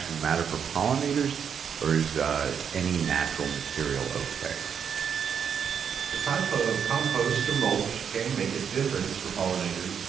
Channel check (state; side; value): quieter; left; 7.5 dB